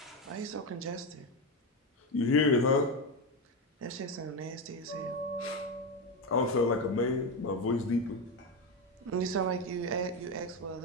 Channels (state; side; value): normal; both; correlation 0.12